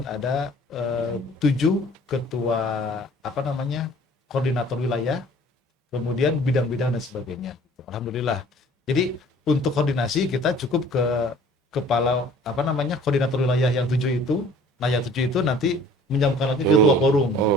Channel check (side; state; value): both; normal; correlation 0.51